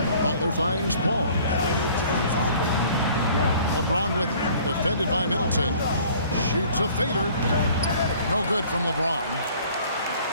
Butler finds Paul. LeBron with it. Defended by Middleton. Shoots a fader. No good from LeBron.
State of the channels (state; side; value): inverted; both; correlation -0.53